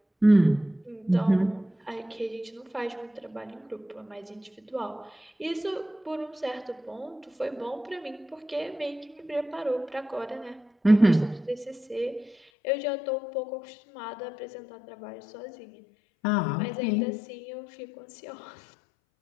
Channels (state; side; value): drops out; right; at 12.4 s